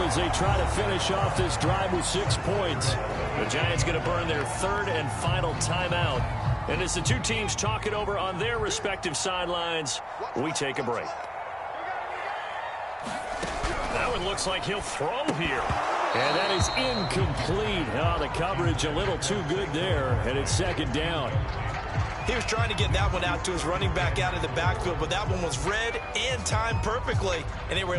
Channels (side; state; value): both; identical; correlation 1.00